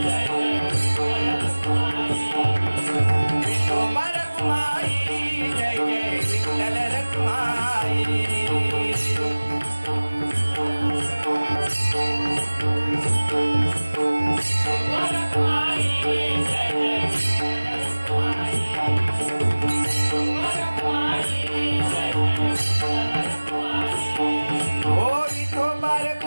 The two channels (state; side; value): inverted; both; correlation -1.00